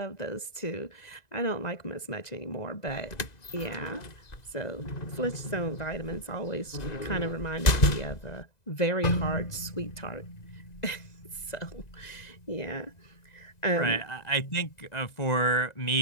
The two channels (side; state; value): right; late; 2.0 ms